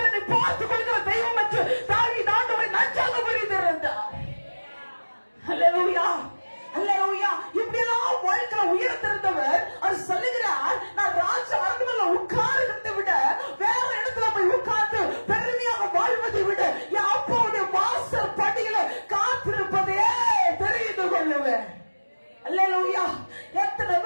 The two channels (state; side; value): inverted; both; correlation -1.00